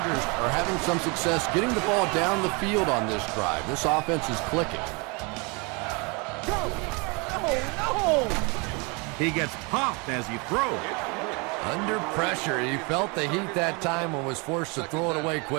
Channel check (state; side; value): quieter; left; 30.2 dB